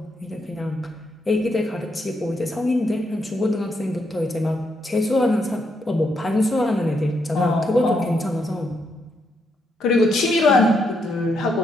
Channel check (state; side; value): normal; both; correlation 0.78